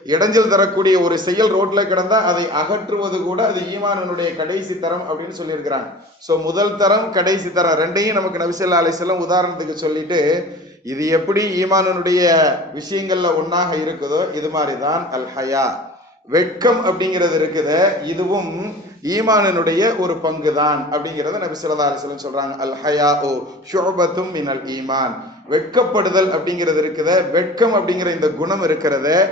இடைஞ்சல் தரக்கூடிய ஒரு செயல் ரோட்ல கிடந்தா அதை அகற்றுவது கூட அது ஈமானுடைய கடைசி தரம் அப்படின்னு சொல்லியிருக்கிறாங்க. ஸோ முதல் தரம் கடைசி தரம் ரெண்டையும் நமக்கு நபி ஸல்லல்லாஹு அலைஹி வஸல்லம் உதாரணத்துக்கு சொல்லிட்டு, இது எப்படி ஈமானுடைய விஷயங்கள்ல ஒன்னாக இருக்குதோ இது மாதிரிதான் அல் ஹயா, வெட்கம் அப்படிங்கிறது இருக்குது, இதுவும் ஈமானினுடைய ஒரு பங்கு தான் அப்படிங்கிறத நபி ஸல்லல்லாஹு அலைஹி வஸல்லம் சொல்றாங்க. அல் ஹயாஉ ஷுஅபத்தும் மினல் ஈமான், வெட்கப்படுதல் அப்படிங்கிறது இருக்குது, வெட்கம் அப்படிங்கிற இந்த குணம் இருக்கிறது,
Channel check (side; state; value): both; normal; correlation 0.40